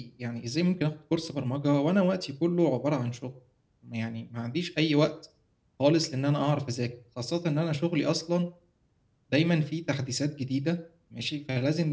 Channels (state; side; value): identical; both; correlation 1.00